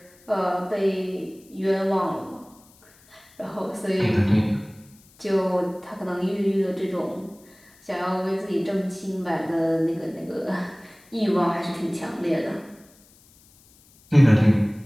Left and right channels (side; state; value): left; noise; hiss, 28 dB below the sound